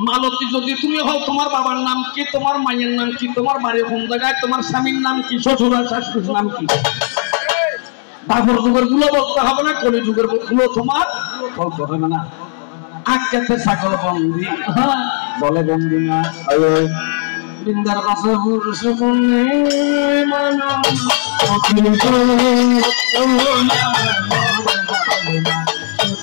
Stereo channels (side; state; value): right; silent; 65 dB below the other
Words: মালতী যদি তুমি হও তোমার বাবার নাম কি তোমার মায়ের নাম কি তোমার বাড়ি কোন জায়গায় তোমার স্বামীর নাম কি শ্বশুর আর শাশুড়ির নাম কি দাপর যুগের গুলো বলতে হবে না কলি যুগের গুলো তোমার বলতে হবে না আজকে ছাগল বন্দি বলে বন্দি না বৃন্দার কাছে পুরুষ